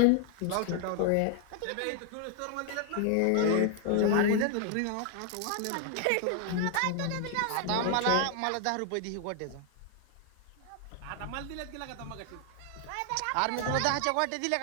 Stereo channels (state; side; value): different; both; correlation 0.00